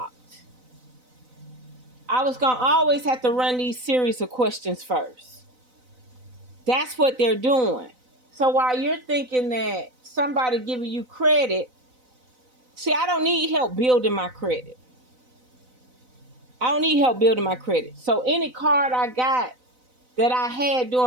I was going to always have to run these series of questions first. That's what they're doing. So while you're thinking that somebody giving you credit, see, I don't need help building my credit. I don't need help building my credit. So any card I got that I had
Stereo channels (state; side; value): late; left; 4.0 ms